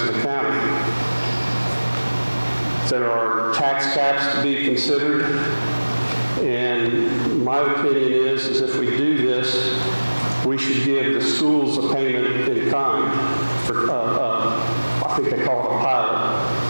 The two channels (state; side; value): inverted; both; correlation -1.00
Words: of the county. There are tax caps to be considered. And my opinion is if we do this, we should give the schools a payment in kind for, I think they call it a